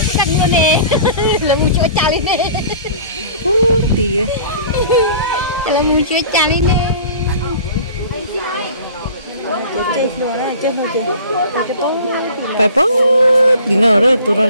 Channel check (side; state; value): both; inverted; correlation -0.45